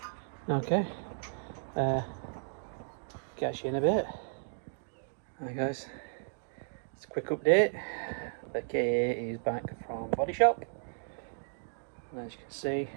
Okay, catch you in a bit. Hi guys, it's a quick update. The KA is back from body shop, and as you can see,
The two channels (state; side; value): silent; left; digital silence